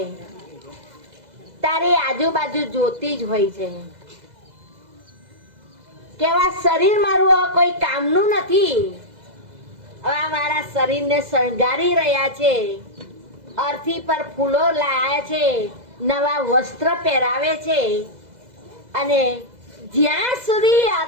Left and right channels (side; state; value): left; late; 2.0 ms